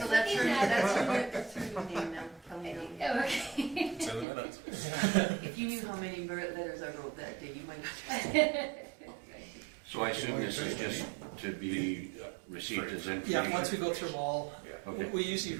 that's her, looking at that's her new name now, Kelly Nelly. Okay. It's in the minutes. If you knew how many letters I wrote that day, you might have. So I assume this is just to be received as information? Yeah, once we go through them all, Okay. we usually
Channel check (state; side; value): drops out; left; at 4.2 s